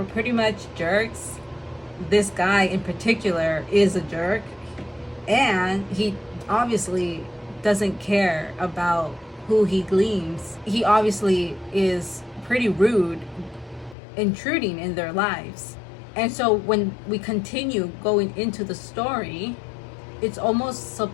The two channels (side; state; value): right; drops out; at 14.0 s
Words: pretty much jerks. This guy in particular is a jerk, and he obviously doesn't care about who he gleans. He obviously is pretty rude, intruding in their lives. And so when we continue going into the story, it's almost